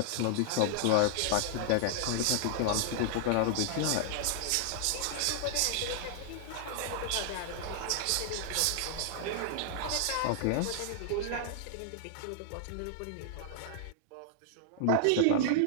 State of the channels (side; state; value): both; different; correlation -0.01